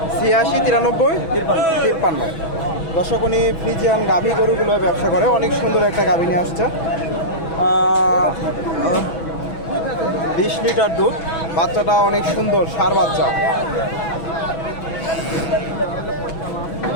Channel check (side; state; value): right; late; 6.1 ms